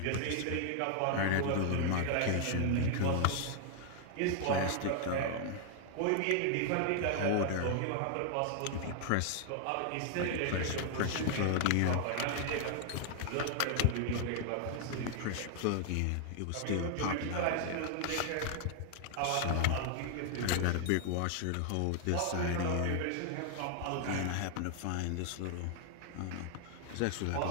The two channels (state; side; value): different; both; correlation 0.00